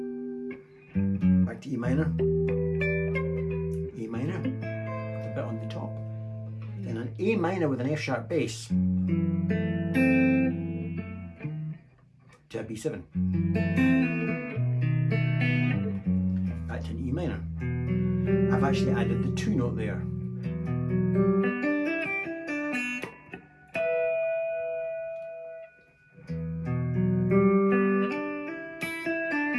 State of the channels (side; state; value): both; identical; correlation 1.00